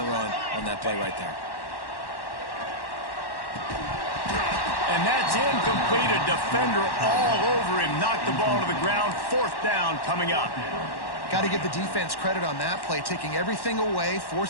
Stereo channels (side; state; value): right; late; 1.1 ms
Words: run on that play right there. And that's incomplete. A defender all over him. Knocked the ball to the ground. Fourth down coming up. Got to give the defense credit on that play, taking everything away,